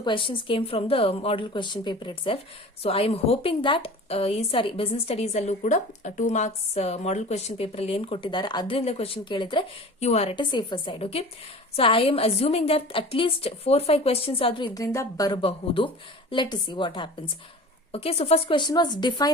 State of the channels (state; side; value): normal; both; correlation 0.39